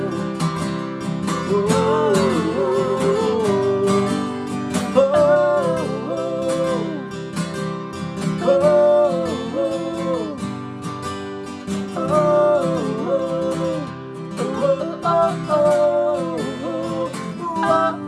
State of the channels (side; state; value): both; identical; correlation 1.00